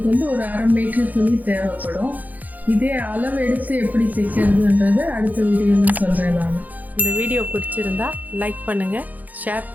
வந்து ஒரு 1/2 மீட்டர் துணி தேவைப்படும். இதே அளவு எடுத்து எப்படி தைக்கிறதுன்றது அடுத்த வீடியோவில் சொல்கிறேன் நான். இந்த வீடியோ பிடிச்சிருந்தா லைக் பண்ணுங்கள், ஷேர்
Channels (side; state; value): left; late; 0.081 ms